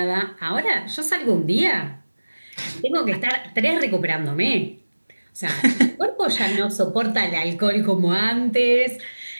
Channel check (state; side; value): inverted; both; correlation -1.00